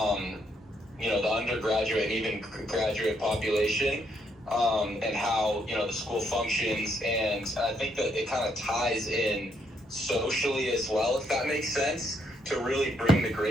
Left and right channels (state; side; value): normal; both; correlation 0.74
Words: you know, the undergraduate and even graduate population, and how, you know, the school functions. And I think that it kind of ties in socially as well, if that makes sense, to really bring the